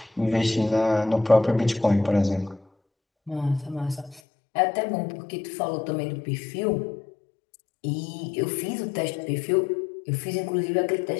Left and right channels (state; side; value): drops out; right; at 4.2 s